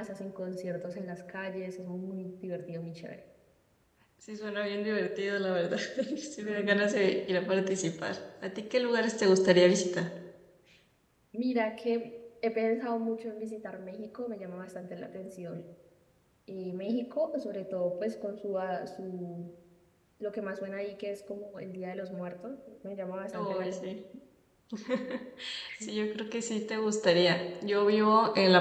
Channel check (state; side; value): identical; both; correlation 1.00